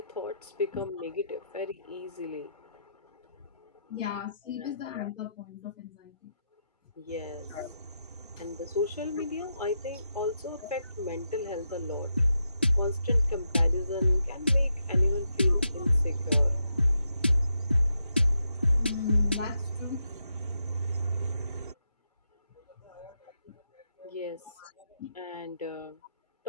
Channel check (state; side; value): inverted; both; correlation -0.84